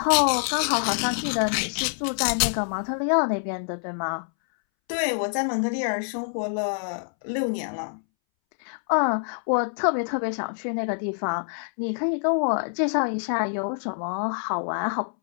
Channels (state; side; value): silent; right; 61 dB below the other